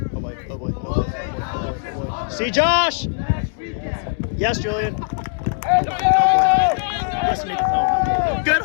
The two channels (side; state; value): right; silent; digital silence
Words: See Josh. Yes, Julian. Good